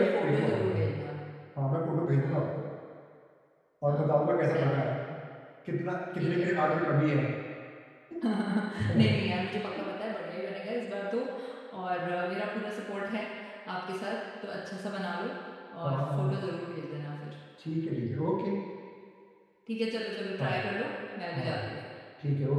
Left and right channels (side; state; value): both; identical; correlation 1.00